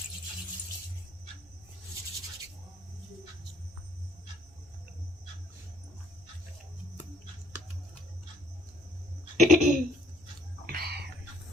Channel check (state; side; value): normal; both; correlation 0.62